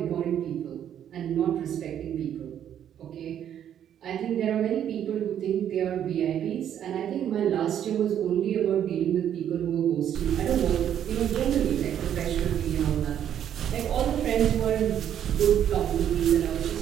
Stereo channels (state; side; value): quieter; left; 9.9 dB